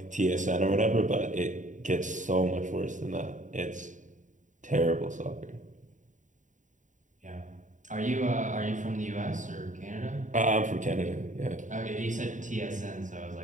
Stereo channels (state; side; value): late; left; 0.36 ms